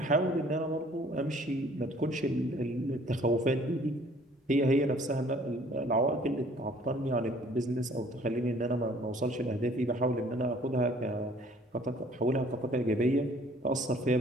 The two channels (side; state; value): both; normal; correlation 0.56